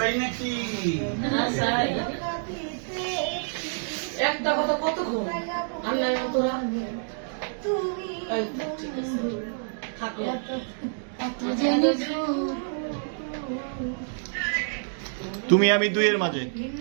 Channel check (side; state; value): left; silent; digital silence